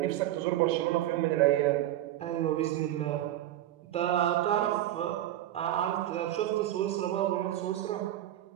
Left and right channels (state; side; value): quieter; left; 13.4 dB